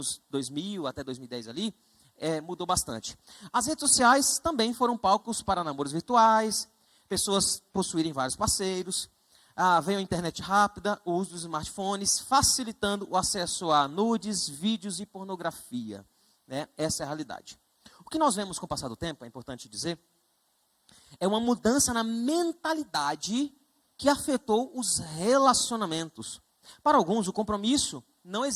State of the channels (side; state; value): both; identical; correlation 1.00